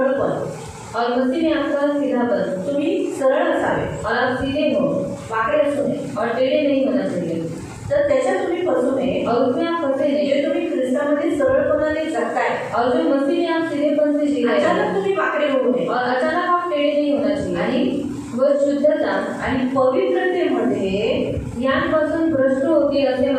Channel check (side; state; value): both; identical; correlation 1.00